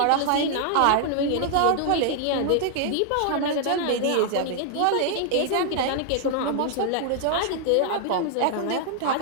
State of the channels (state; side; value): different; both; correlation 0.00